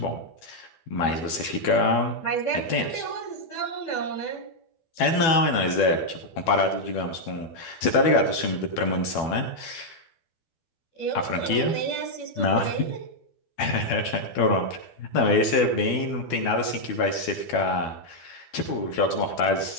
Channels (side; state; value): right; late; 12 ms